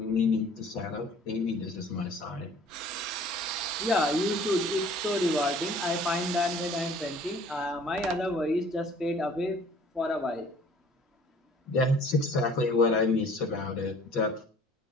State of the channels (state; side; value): normal; both; correlation 0.53